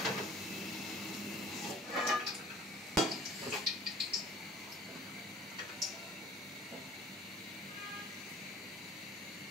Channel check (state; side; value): normal; both; correlation 0.48